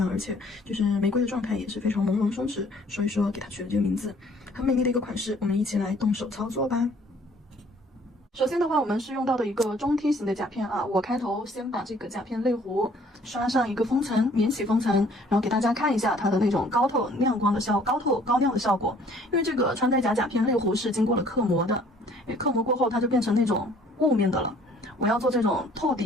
而且就是玫瑰的状态也是非常朦胧松弛，所以说给它取了这个名字，很美丽的一个款式。我们一起来动手操作吧。首先的话，我们是用到的一个中梯形的甲片啊。我开头先把这个甲片类弧刷上一个封层，免洗封层，然后给大家看一下它的那种高亮的效果。因为这个穿戴甲片类弧是经过了刻模的，刻模过后它就变成那种雾面的了。我要做这种透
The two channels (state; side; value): normal; both; correlation 0.57